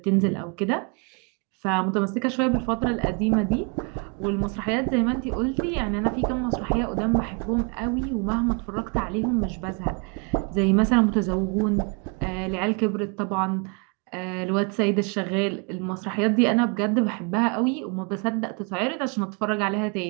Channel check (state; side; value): quieter; left; 34.8 dB